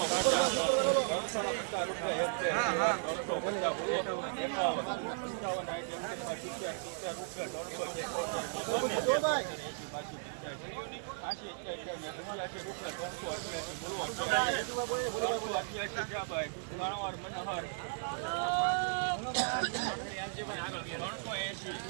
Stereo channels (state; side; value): silent; left; digital silence